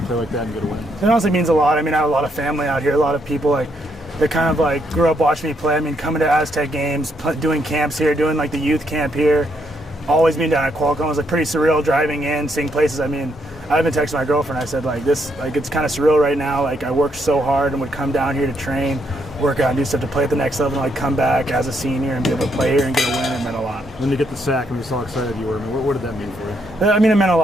play like that and get a win? It honestly means a lot. I mean, I have a lot of family out here, a lot of people like that kind of like grew up watching me play. I mean, coming to Aztec games, doing camps here, doing like the youth camp here, always being down at Qualcomm was like pretty surreal. Driving in, seeing places. I mean, I even texted my girlfriend. I said like this, like it's kind of surreal right now. Like I worked so hard and would come down here to train, work out, and do stuff to play at the next level, and like come back as a senior and be able to play here and get a win. It meant a lot. When you get the sack and we saw how excited you were, I mean, what did that mean for you? I mean, it meant a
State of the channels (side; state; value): both; normal; correlation 0.75